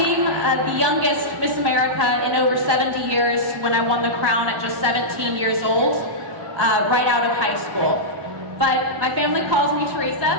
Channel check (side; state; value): left; late; 1.1 ms